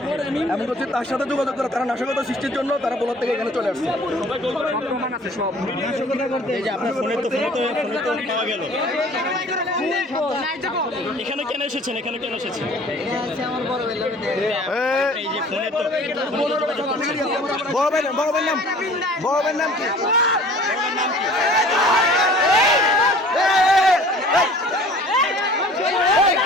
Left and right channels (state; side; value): normal; both; correlation 0.48